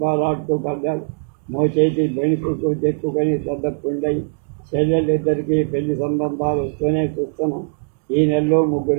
ఆడుతూ పడ్డాడు. మోచేతి బెణుకుకు తెక్కుకొని పెద్ద పుండయి. చెల్లెళ్ళిద్దరికీ పెళ్లి సంబంధాలు వస్తూనే చూస్తున్నాం. ఈ నెలలో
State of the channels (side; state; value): left; silent; 65 dB below the other